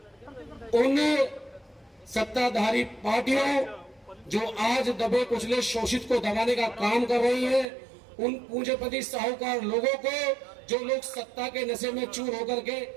उन सत्ताधारी पार्टियों जो आज दबे कुचले शोषित को दबाने का काम कर रही है, उन पूंजीपति साहूकार लोगों को, जो लोग सत्ता के नशे में चूर होकर के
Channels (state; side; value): drops out; left; at 7.7 s